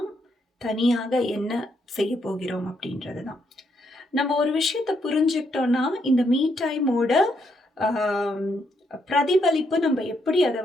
தனியாக என்ன செய்ய போகிறோம் அப்படின்றது தான். நம்ம ஒரு விஷயத்தை புரிஞ்சுக்கிட்டோம்னா இந்த மீ டைமோட பிரதிபலிப்பு நம்ம எப்படி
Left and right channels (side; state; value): both; normal; correlation 0.76